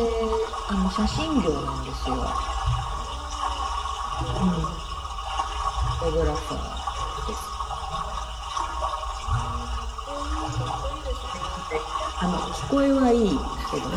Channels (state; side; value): identical; both; correlation 1.00